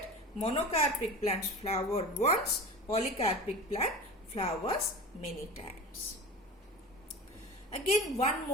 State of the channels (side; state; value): both; normal; correlation 0.33